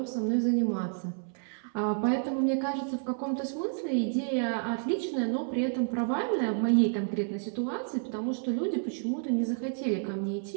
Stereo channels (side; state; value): left; silent; 58 dB below the other